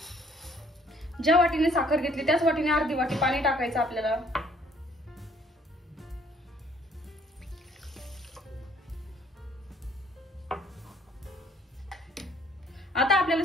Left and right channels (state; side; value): normal; both; correlation 0.61